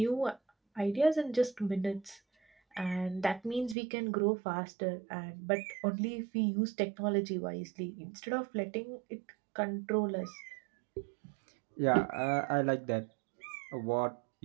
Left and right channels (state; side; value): drops out; left; at 3.8 s